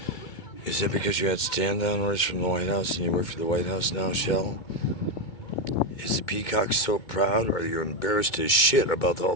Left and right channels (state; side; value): late; right; 2.2 ms